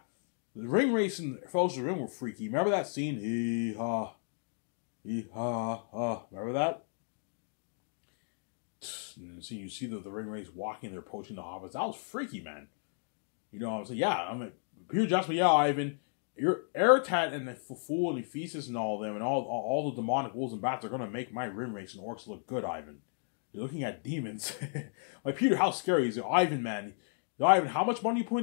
The ring race in Fellowship of the Ring were freaky. Remember that scene? Hee-ha. Hee-ha-ha. Remember that? And you see the ring race walking, they're approaching the hobbits. That was freaky, man. You know what I'm saying? Yeah, I'm like, Peter Jackson, yeah, Ivan, your Aratat and the Fool and Ephesus and all of them and all the demonic wolves and bats are going to make my rim race and orcs look good, Ivan. You're looking at demons. Like, Peter, how scary is it? Ivan, man. Ivan, how much money you put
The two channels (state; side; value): silent; right; 55 dB below the other